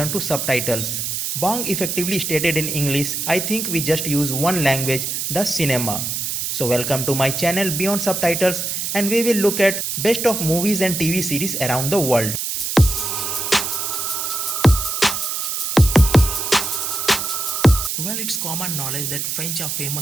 to subtitles. Bong effectively stated in English, "I think we just use one language, the cinema." So welcome to my channel Beyond Subtitles, and we will look at best of movies and TV series around the world. Well, it's common knowledge that French are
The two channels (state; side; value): noise; right; hiss, 2 dB below the sound